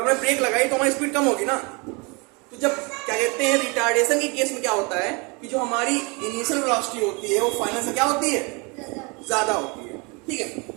हमने ब्रेक लगाई तो हमारी स्पीड कम होगी ना। तो जब क्या कहते हैं रिटार्डेशन के केस में क्या होता है कि जो हमारी इनिशियल वेलोसिटी होती है वो फाइनल से क्या होती है? ज्यादा होती है। ठीक है,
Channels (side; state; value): left; quieter; 29.7 dB